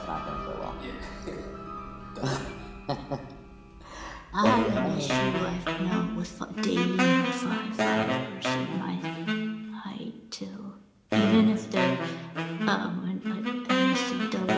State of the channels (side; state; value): both; identical; correlation 1.00